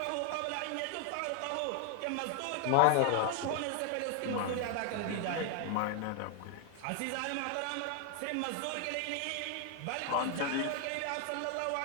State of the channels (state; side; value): different; both; correlation 0.01